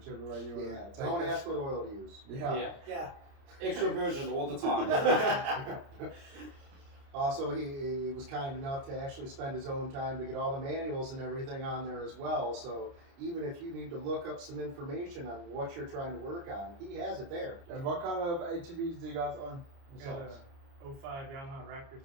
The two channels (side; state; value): left; late; 29 ms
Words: way you want to take Don't it. ask what oil to use. Yeah. Yeah. Extra virgin all the time. Also, he was kind enough to actually spend his own time to get all the manuals and everything on there as well. So even if you need to look up some information on what you're trying to work on, he has it there. And what kind of ATVs do you guys own? Got a 05 Yamaha Raptor